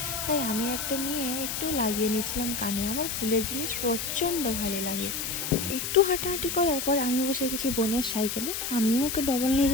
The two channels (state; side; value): noise; left; hiss, 3 dB below the sound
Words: তাই আমি একটা নিয়ে একটু লাগিয়ে নিয়েছিলাম কানে। আমার ফুলের জিনিস প্রচণ্ড ভালো লাগে। একটু হাঁটাহাঁটি করার পর আমি বসে গেছি বোনের সাইকেলে। আমিও ওকে ডবল নিয়ে